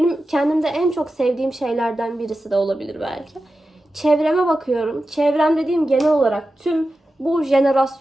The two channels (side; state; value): both; normal; correlation 0.92